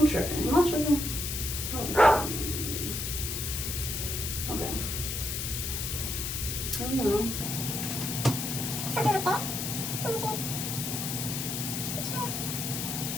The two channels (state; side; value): noise; left; hiss, 3 dB below the sound